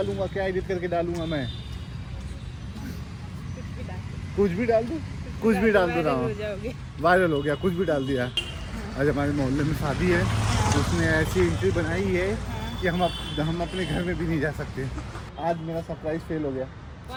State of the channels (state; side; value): identical; both; correlation 1.00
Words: क्या एडिट करके डालूँगा मैं? कुछ भी डाल दूँ, कुछ भी डाल दे रहा हूँ, वायरल हो गया, कुछ भी डाल दिया। आज हमारे मोहल्ले में शादी है, उसने ऐसी एंट्री बनाई है कि हम अपने घर में भी नहीं जा सकते। आज मेरा सरप्राइज फेल हो गया।